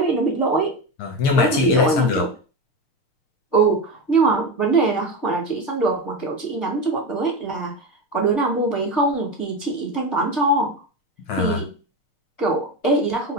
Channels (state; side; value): late; right; 6.6 ms